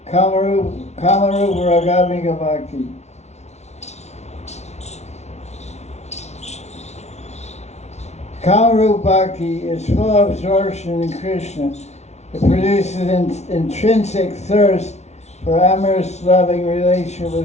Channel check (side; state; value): right; late; 0.32 ms